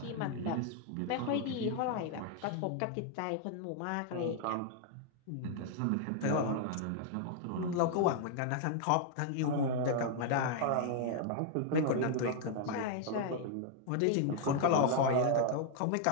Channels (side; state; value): both; different; correlation -0.01